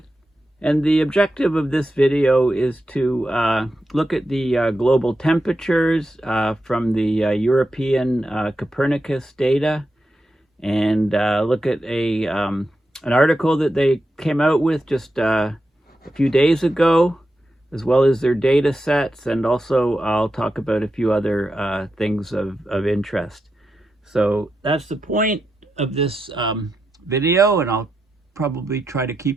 and the objective of this video is to look at the global temperatures from the European Copernicus data, and look at an article that they came out with just a few days ago, as well as their data sets, and also I'll talk about a few other things of interest. So that's the point of this video, and I'll probably try to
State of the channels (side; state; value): both; normal; correlation 0.88